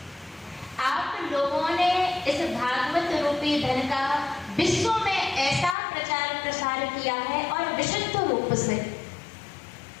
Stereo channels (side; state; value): right; drops out; at 5.8 s